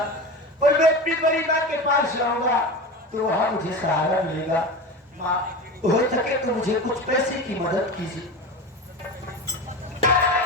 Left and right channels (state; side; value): normal; both; correlation 0.27